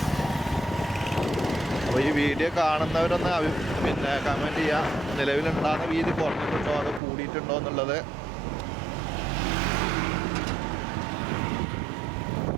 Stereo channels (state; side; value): drops out; left; at 7.0 s